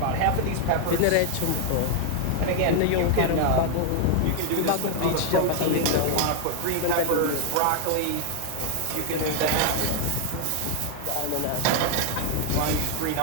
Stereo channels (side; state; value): both; different; correlation 0.00